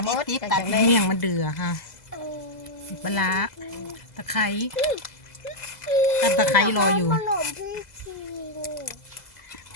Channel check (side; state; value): right; late; 2.0 ms